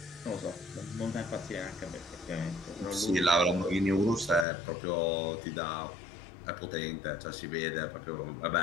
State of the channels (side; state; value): right; drops out; at 4.5 s